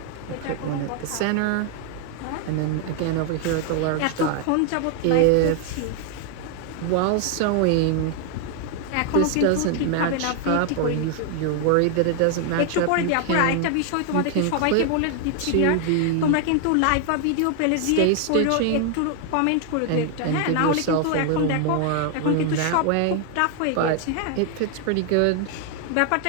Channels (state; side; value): different; both; correlation 0.00